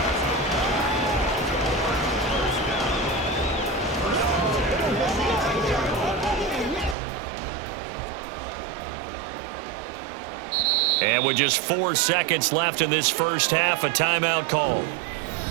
And with just 4 seconds left in this first half, a timeout call.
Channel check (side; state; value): left; drops out; at 7.0 s